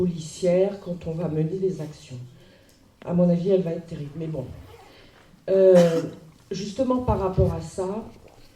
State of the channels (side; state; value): both; identical; correlation 1.00